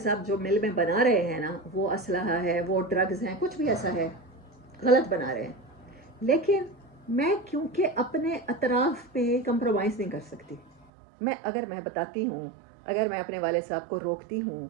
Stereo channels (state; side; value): drops out; left; at 10.9 s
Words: صاحب جو مل میں بنا رہے ہیں نا، وہ اسلحہ ہے، وہ ڈرگز ہیں، کچھ بھی ایسا ہے، غلط بنا رہے ہیں، لیکن میں کیونکہ اپنے اطراف پہ کمپرومائز نہیں کر سکتی، اگر میں بتاتی ہوں، اگر میں اپنے والد صاحب کو روکتی ہوں